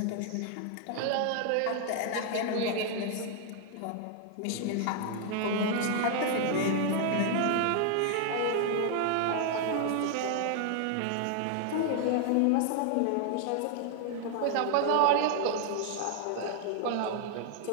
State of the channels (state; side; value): different; both; correlation 0.00